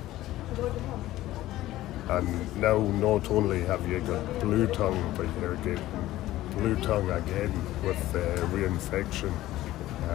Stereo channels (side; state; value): right; quieter; 15.4 dB